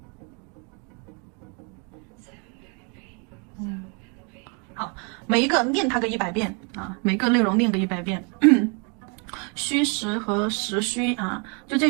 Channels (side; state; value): left; quieter; 35.2 dB